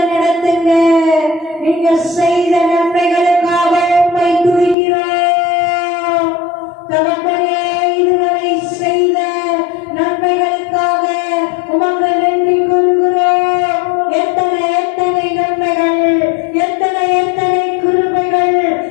நடத்துங்க. நீங்க செய்த நன்மைகளுக்காக உம்மை துதிக்கிறோம். தகப்பனே இதுவரை செய்த நன்மைகளுக்காக உமக்கு நன்றி கூறுகிறோம். எத்தனை எத்தனை நன்மைகள், எத்தனை எத்தனை கிருபைகள்,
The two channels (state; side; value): drops out; right; at 4.8 s